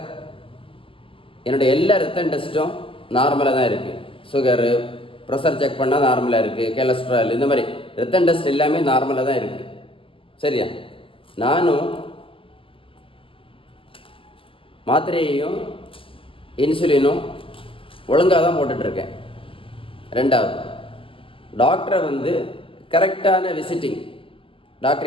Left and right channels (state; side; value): late; right; 0.25 ms